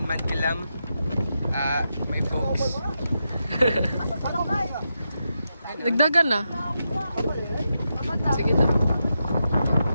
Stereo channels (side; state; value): both; inverted; correlation -0.86